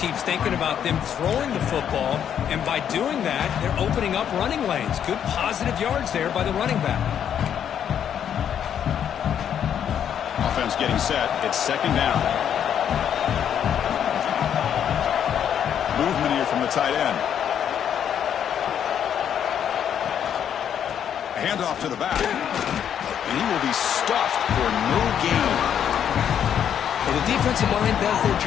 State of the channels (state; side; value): quieter; right; 9.0 dB